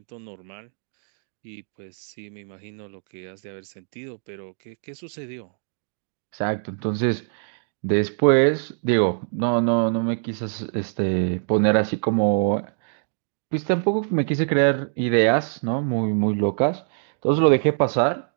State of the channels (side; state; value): left; silent; digital silence